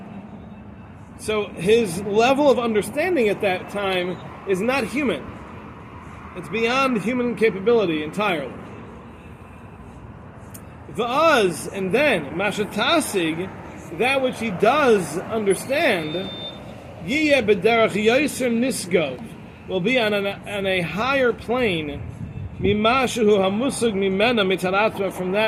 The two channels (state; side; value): identical; both; correlation 1.00